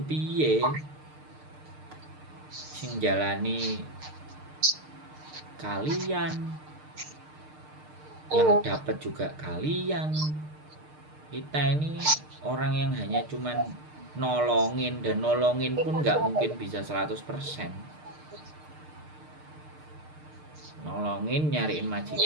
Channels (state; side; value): late; left; 6.6 ms